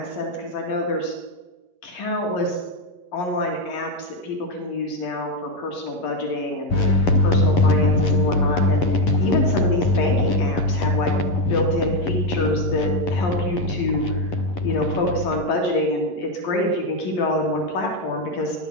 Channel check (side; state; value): right; late; 11 ms